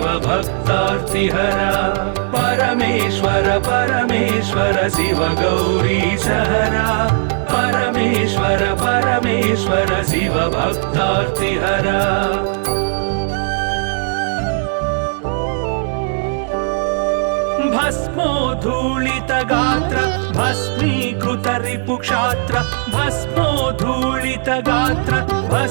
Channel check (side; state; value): left; silent; 68 dB below the other